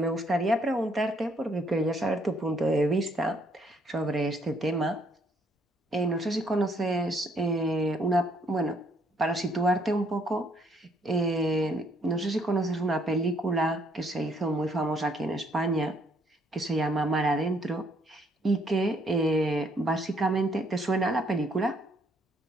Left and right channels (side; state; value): both; normal; correlation 0.68